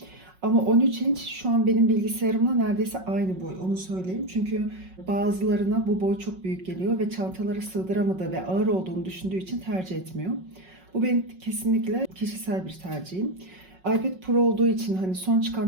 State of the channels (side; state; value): left; late; 5.4 ms